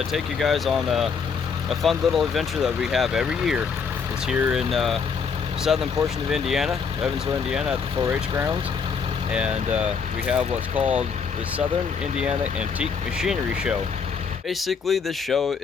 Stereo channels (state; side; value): quieter; right; 5.9 dB